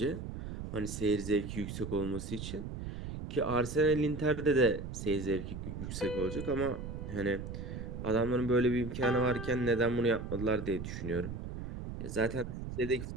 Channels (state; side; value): noise; right; rumble, 7 dB below the sound